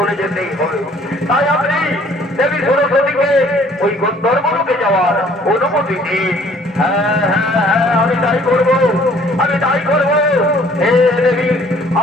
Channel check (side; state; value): both; normal; correlation 0.57